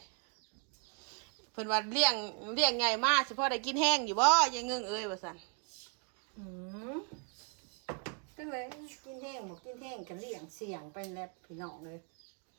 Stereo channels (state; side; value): quieter; left; 38.5 dB